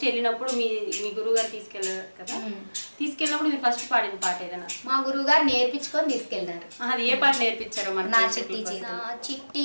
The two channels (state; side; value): inverted; both; correlation -1.00